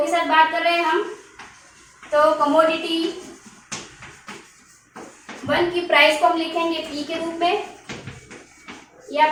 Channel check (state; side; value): identical; both; correlation 1.00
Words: साथ बात कर रहे हैं हम, तो कमोडिटी 1 की प्राइस को हम लिखेंगे P के रूप में या